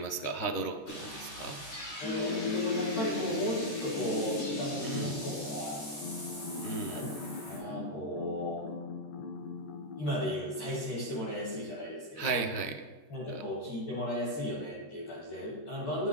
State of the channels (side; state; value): right; late; 14 ms